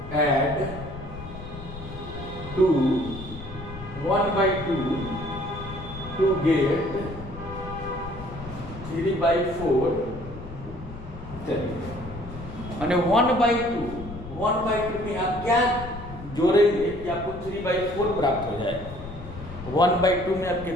add to 1/2 to get 3/4? चलिए, मैंने 1/2 में आप क्या जोड़ेंगे कि आपको 3/4 प्राप्त हो जाए? 1/2 में आप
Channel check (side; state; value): left; noise; rumble, 12 dB below the sound